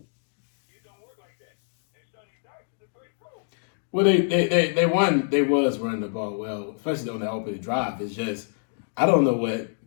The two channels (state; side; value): silent; right; digital silence